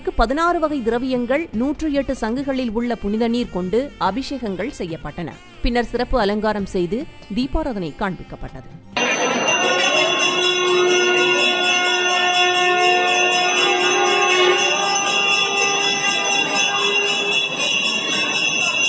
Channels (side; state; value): both; identical; correlation 1.00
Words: 16 வகை திரவியங்கள் 108 சங்குகளில் உள்ள புனித நீர் கொண்டு அபிஷேகங்கள் செய்யப்பட்டன. பின்னர் சிறப்பு அலங்காரம் செய்து தீபாராதனை காண்பிக்கப்பட்டது.